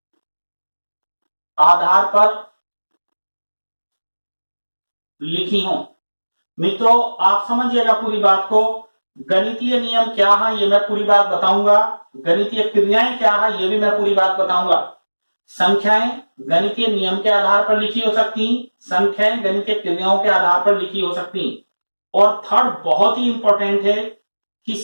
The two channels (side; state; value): both; inverted; correlation -1.00